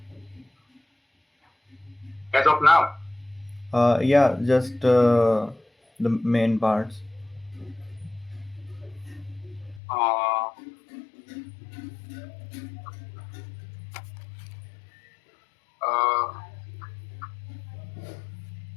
As of now, Yeah, just the main parts. uh,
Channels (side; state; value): right; drops out; at 9.8 s